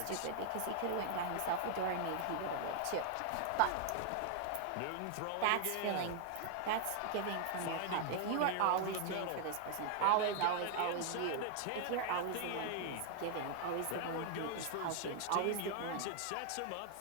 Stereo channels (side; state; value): both; different; correlation 0.00